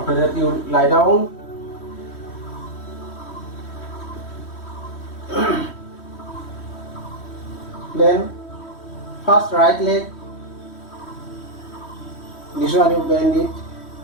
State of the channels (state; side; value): late; right; 3.1 ms